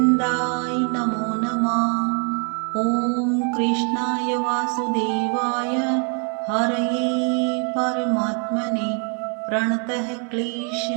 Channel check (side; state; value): left; quieter; 39.6 dB